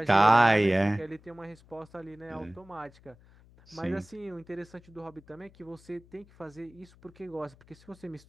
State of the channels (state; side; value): noise; left; hum, 26 dB below the sound